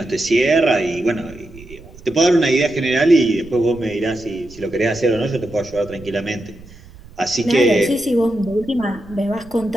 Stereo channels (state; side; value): noise; right; rumble, 21 dB below the sound